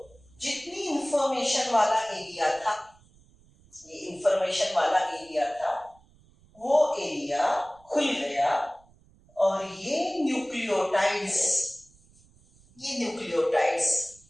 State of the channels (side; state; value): right; noise; rumble, 29 dB below the sound